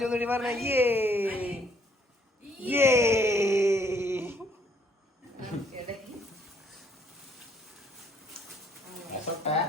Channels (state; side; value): normal; both; correlation 0.66